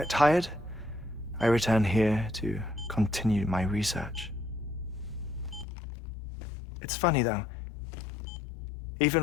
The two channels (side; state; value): right; drops out; at 5.7 s